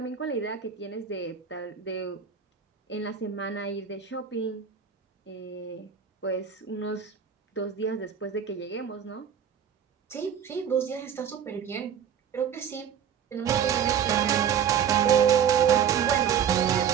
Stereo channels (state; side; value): quieter; left; 8.2 dB